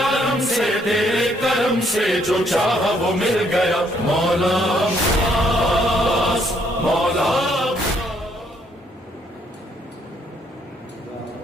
سے تیرے کرم سے جو چاہا وہ مل گیا، مولا عباس مولا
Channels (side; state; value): both; normal; correlation 0.69